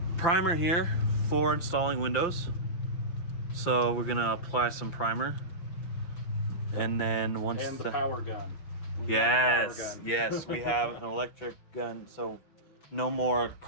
primer here for installing windows. So we're gonna apply some primer, and then once And the power gun. yes, we have an electric gun, so no more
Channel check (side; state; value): right; late; 5.9 ms